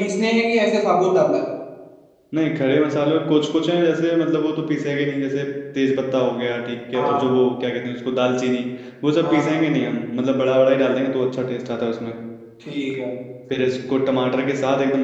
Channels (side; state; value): both; identical; correlation 1.00